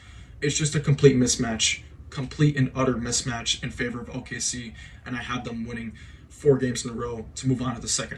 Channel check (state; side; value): identical; both; correlation 1.00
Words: It's just a complete mismatch. Complete and utter mismatch in favor of OKC, and I have them winning 4 games in a row to move on to the second